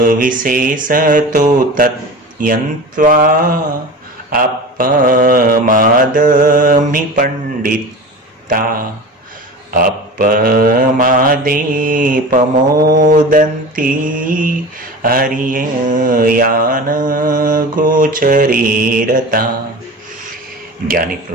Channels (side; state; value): both; normal; correlation 0.34